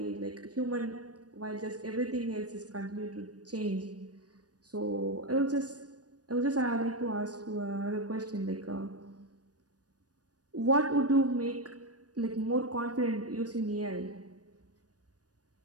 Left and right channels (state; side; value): late; left; 0.68 ms